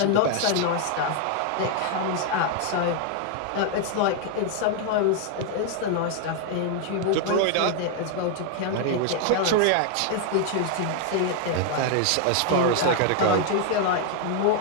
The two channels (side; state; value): both; different; correlation 0.00